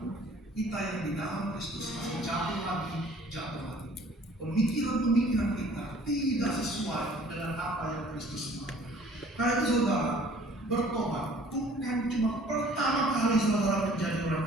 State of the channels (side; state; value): both; normal; correlation 0.53